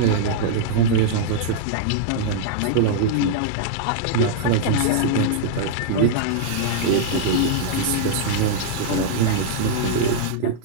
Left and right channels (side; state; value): both; different; correlation -0.01